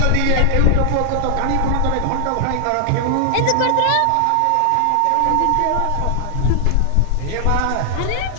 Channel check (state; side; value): different; both; correlation 0.00